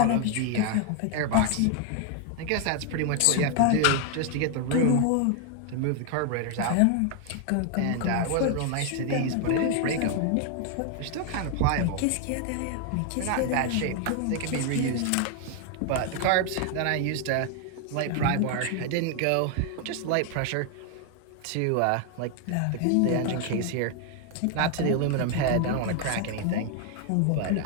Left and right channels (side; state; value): both; different; correlation 0.00